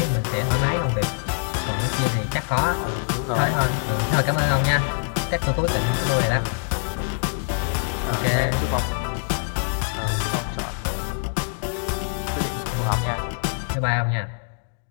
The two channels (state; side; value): silent; right; digital silence